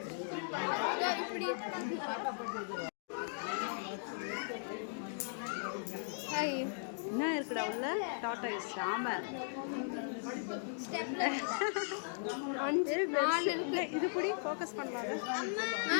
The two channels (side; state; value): right; silent; digital silence